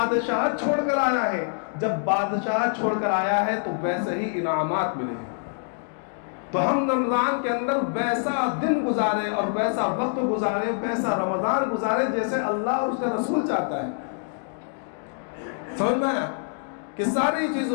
چھوڑ کر آیا ہے، جب بادشاہ چھوڑ کر آیا ہے تو ویسے ہی انعامات ملے ہیں۔ تو ہم رمضان کے اندر ویسا دن گزارے اور ویسا وقت گزارے، ویسا رمضان گزارے جیسے اللہ اور اس کا رسول چاہتا ہے۔ سمجھ میں آیا کہ ساری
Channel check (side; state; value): right; silent; digital silence